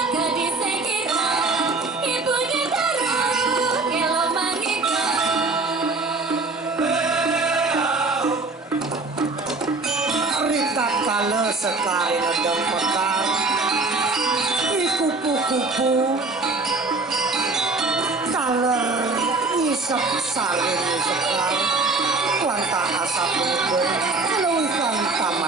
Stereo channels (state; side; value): quieter; left; 3.6 dB